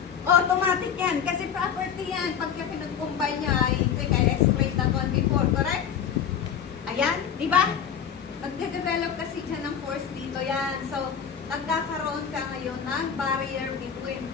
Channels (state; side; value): quieter; right; 8.0 dB